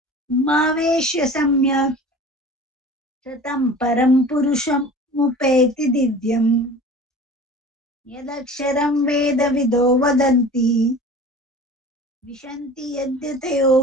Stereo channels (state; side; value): normal; both; correlation 0.40